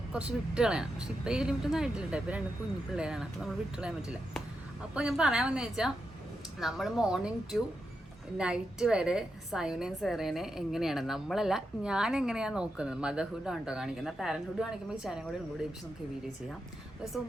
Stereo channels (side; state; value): both; normal; correlation 0.86